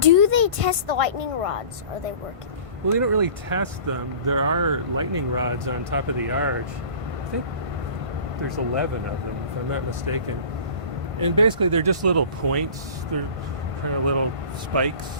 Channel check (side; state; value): left; late; 1.5 ms